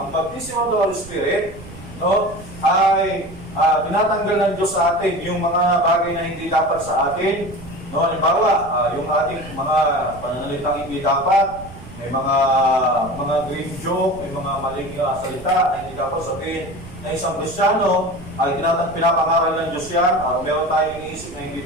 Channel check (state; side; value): noise; right; rumble, 16 dB below the sound